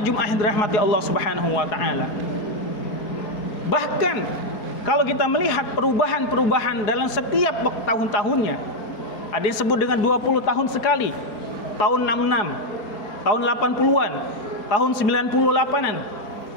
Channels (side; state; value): right; late; 4.3 ms